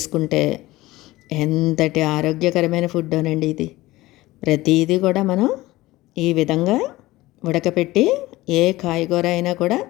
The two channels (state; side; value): quieter; right; 18.4 dB